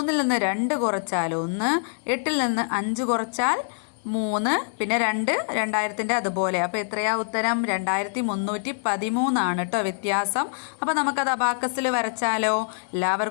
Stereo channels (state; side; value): silent; right; digital silence